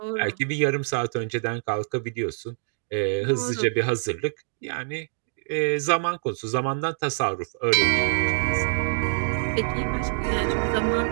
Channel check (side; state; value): left; silent; digital silence